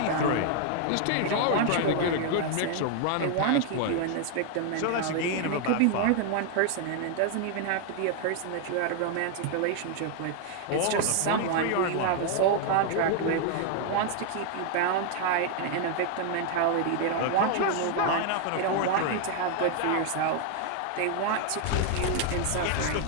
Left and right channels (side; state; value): both; different; correlation 0.00